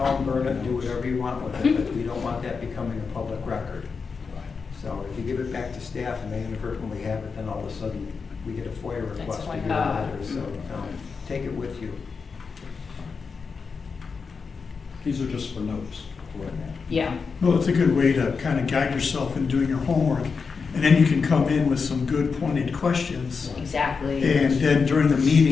burn it, do whatever you want with it, but we don't want that becoming a public record. So if you give it back to staff and they inadvertently have it, then all of a sudden we get a FOIA request to your letter. So take it with you. These are just for notes. Yeah. well, it's a good way to kind of guide yourself in doing your homework. And then you can come in with some good pointed questions. Exactly. And then during the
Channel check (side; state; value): right; quieter; 5.2 dB